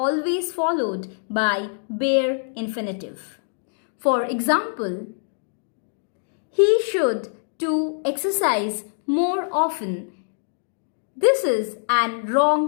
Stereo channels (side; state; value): right; silent; digital silence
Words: followed by bare infinitive. For example, he should to exercise more often. This is an